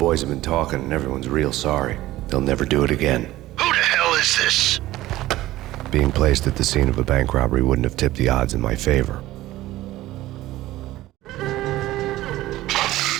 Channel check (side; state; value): left; quieter; 16.3 dB